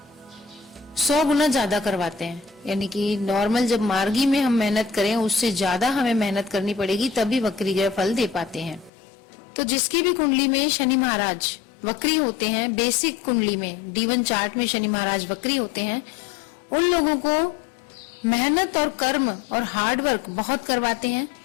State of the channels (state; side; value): drops out; right; at 8.9 s